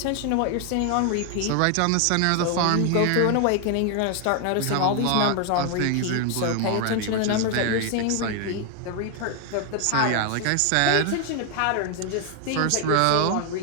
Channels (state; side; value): different; both; correlation 0.00